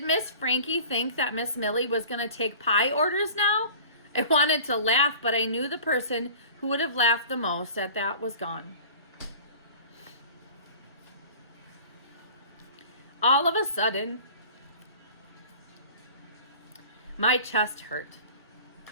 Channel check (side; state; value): both; inverted; correlation -0.42